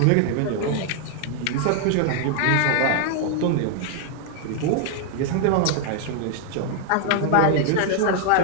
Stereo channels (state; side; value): different; both; correlation 0.00